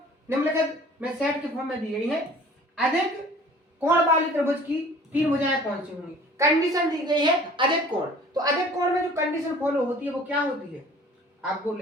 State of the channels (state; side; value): normal; both; correlation 0.49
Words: निम्नलिखित में सेट के फॉर्म में दी गई है। अधिक कोण वाली त्रिभुज की 3 भुजाएं कौन सी होंगी। कंडीशन दी गई है अधिक कोण, तो अधिक कोण में जो कंडीशन फॉलो होती है वो क्या होती है, आपको